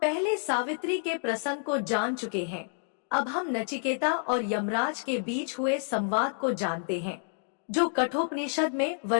सावित्री के प्रसंग को जान चुके हैं, अब हम नचिकेता और यमराज के बीच हुए संवाद को जानते हैं, जो कठोपनिषद में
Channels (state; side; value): silent; right; digital silence